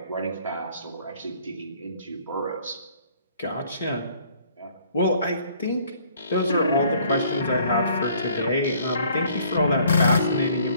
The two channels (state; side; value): inverted; both; correlation -0.59